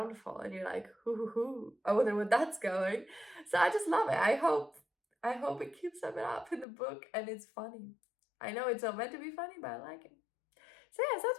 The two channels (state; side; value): drops out; right; at 6.7 s